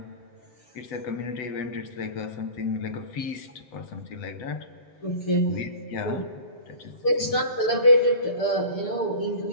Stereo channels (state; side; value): late; right; 6.8 ms